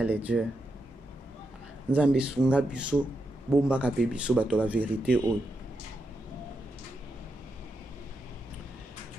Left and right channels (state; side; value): normal; both; correlation 0.85